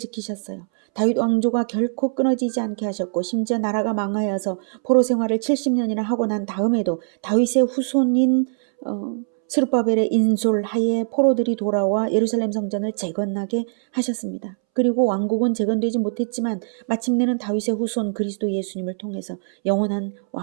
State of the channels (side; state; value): left; silent; 64 dB below the other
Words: 다윗 왕조가 결코 끊어지지 않게 하셨고 심지어 나라가 망하여서 포로 생활을 70년이나 하고 난 다음에도 다윗의 후손인 스룹바벨의 인솔하에 포로들이 돌아와 예루살렘 성전을 재건하게 하셨습니다. 그리고 왕국은 재건되지 못했지만 마침내는 다윗의 후손 그리스도 예수님을 통해서 영원한